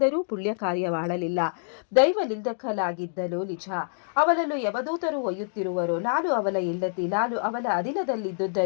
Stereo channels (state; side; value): silent; right; digital silence